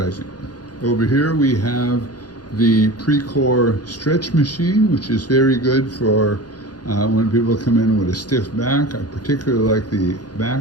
Over here we have the Precor stretch machine, which is very good for when people come in with a stiff back. I particularly like the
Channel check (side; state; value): right; late; 0.69 ms